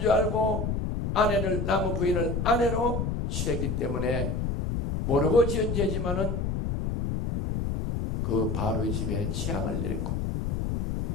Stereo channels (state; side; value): noise; left; rumble, 1 dB below the sound